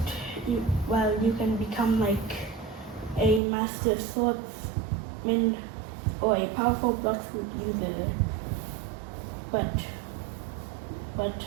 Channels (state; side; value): drops out; left; at 3.4 s